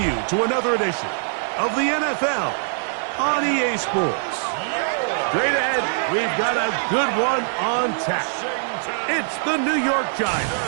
to another edition of the NFL on EA Sports. Straight ahead, we've got a good one on tap. It's the New York Giants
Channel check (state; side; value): silent; left; digital silence